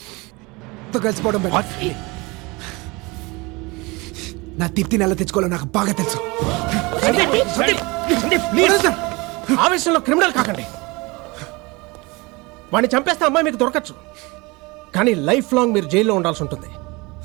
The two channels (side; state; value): left; quieter; 25.1 dB